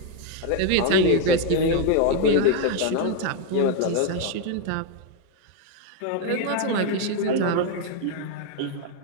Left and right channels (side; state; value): both; different; correlation 0.01